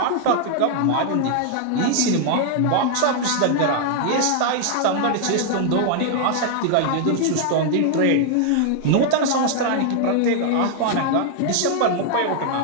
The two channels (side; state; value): both; different; correlation 0.00